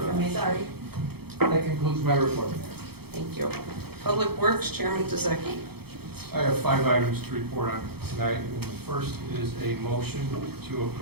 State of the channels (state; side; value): late; left; 0.96 ms